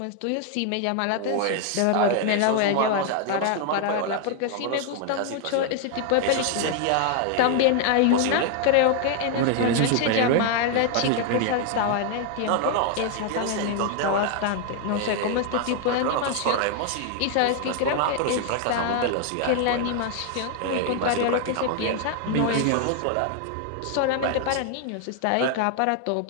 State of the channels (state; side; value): different; both; correlation 0.00